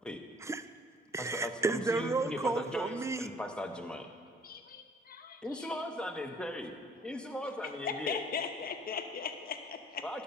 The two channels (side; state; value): both; normal; correlation 0.56